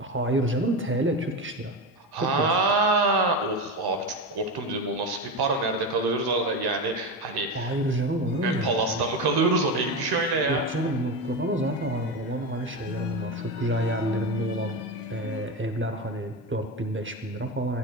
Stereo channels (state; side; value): normal; both; correlation 0.19